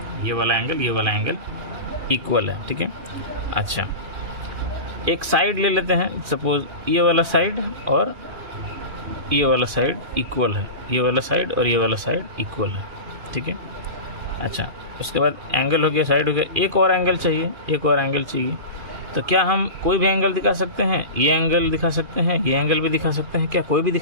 ये वाला एंगल इक्वल है। ठीक है। अच्छा, एक साइड ले लेते हैं, सपोज ये वाला साइड और ये वाला साइड इक्वल है, ये वाला साइड और ये वाला साइड इक्वल है। ठीक है। अच्छा, उसके बाद एंगल हो गया, साइड हो गया, एक और एंगल चाहिए। तो क्या हम कोई भी एंगल दिखा सकते हैं? ये एंगल दिखा सकते हैं, ये एंगल भी दिखा सकते हैं, क्या कोई भी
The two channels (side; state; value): left; late; 2.4 ms